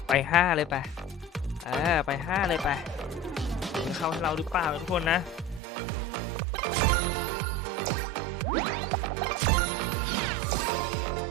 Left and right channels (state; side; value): drops out; left; at 5.6 s